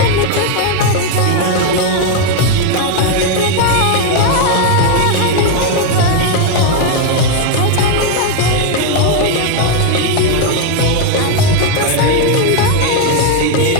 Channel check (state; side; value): different; both; correlation 0.01